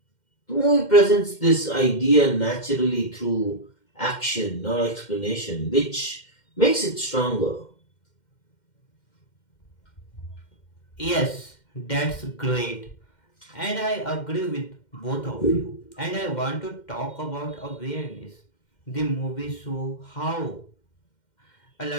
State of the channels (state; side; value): late; right; 2.1 ms